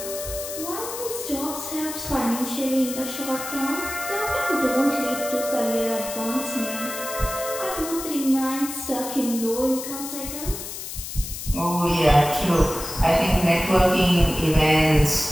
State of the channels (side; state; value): left; noise; hiss, 8 dB below the sound